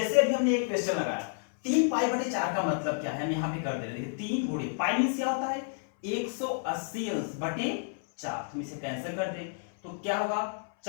अभी हमने एक क्वेश्चन लगाया 3π/4 का मतलब क्या है, हम यहाँ पे कर दे रहे हैं 3 गुणे पाई मींस क्या होता है 180 अंश बटे 4, हम इसे कैंसिल कर दे तो क्या होगा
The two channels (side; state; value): right; silent; 58 dB below the other